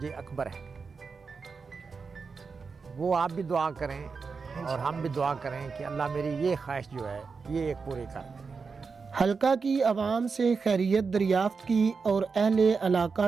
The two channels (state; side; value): quieter; left; 5.0 dB